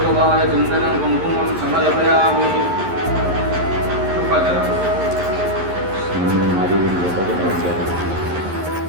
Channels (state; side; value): late; left; 11 ms